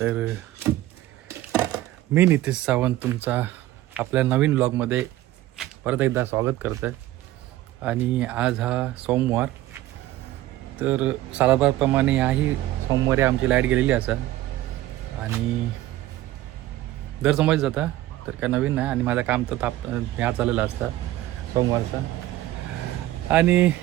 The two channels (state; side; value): quieter; left; 15.3 dB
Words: मी नितीश सावंत तुमचा आपल्या नवीन ब्लॉगमध्ये परत एकदा स्वागत करतो आहे. आणि आज हा सोमवार, तर सालाबारप्रमाणे याही सोमवारी आमची लाईट गेलेली असा आणि दर सोमवारी जाता तर काय नवीन नाही. आणि माझं काम तर ह्या चाललेलं असतं सोमवारचा. आणि